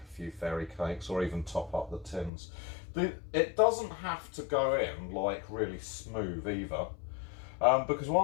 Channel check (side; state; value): right; drops out; at 2.3 s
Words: few fairy cakes or even top up the tins. It doesn't have to go in like really smooth either. Because